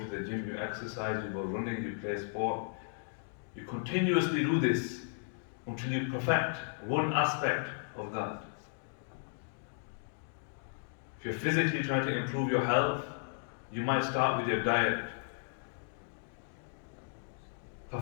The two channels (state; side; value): silent; right; digital silence